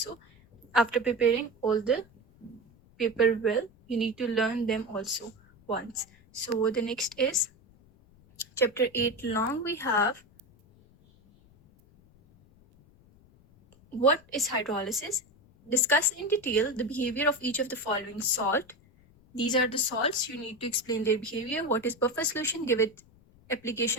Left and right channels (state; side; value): noise; left; rumble, 28 dB below the sound